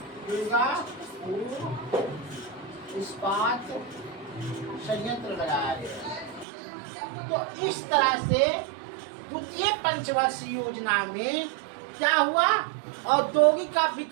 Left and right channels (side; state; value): left; drops out; at 6.5 s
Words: दुर्गापुर इस्पात संयंत्र लगाया गया। तो इस तरह से द्वितीय पंचवर्षीय योजना में क्या हुआ, औद्योगिक का